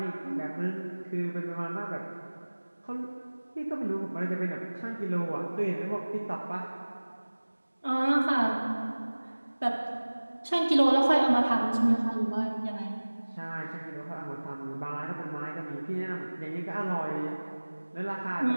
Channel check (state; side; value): inverted; both; correlation -1.00